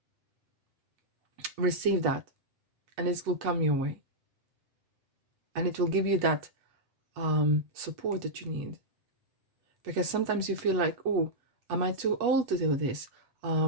that, and it will come your way, and it will give you that support that you need. Because sometimes you feel like, oh, am I too old to do this?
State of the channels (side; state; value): left; late; 8.2 ms